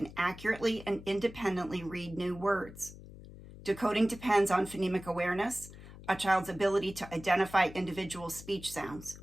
accurately and independently read new words. Decoding depends on phonemic awareness, a child's ability to identify individual speech sounds.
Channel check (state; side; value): noise; left; hum, 16 dB below the sound